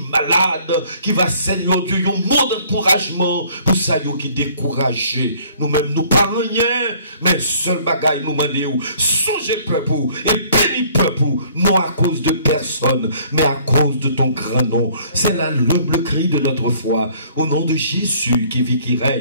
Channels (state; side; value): inverted; both; correlation -0.57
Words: malade, qui va, Seigneur Dieu, un mot d'encouragement, pour ça, qui est découragé. Nous-mêmes, nous parlons rien, mais seul bagaille nous demandons, songez peuple, et bénis peuple, non à cause de personne, mais à cause de ton grand nom. C'est là l'humble cri de notre foi, au nom de Jésus qui vit, qui